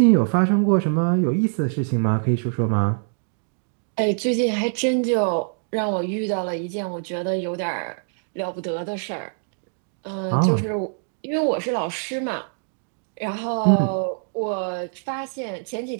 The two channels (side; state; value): left; silent; digital silence